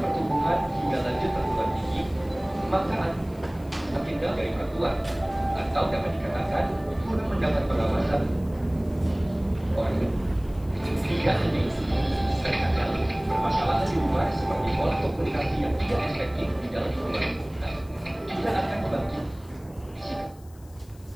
hingga lanjut perguruan tinggi, maka anak semakin jauh dari orang tua, atau dapat dikatakan kurang mendapat pengawasan orang tua. Hingga ini terkadang permasalahan di luar seperti pola komunikasi yang tidak efektif di dalam lingkungan juga akan membantu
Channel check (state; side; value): noise; left; hiss, 27 dB below the sound